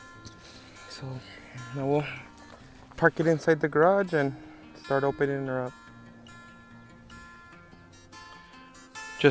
So now we'll park it inside the garage and start opening her up.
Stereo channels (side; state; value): both; identical; correlation 1.00